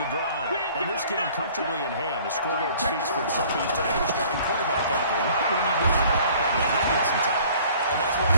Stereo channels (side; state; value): both; inverted; correlation -0.52